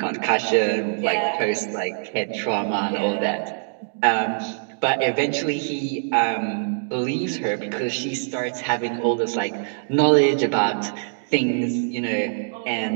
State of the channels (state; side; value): silent; left; digital silence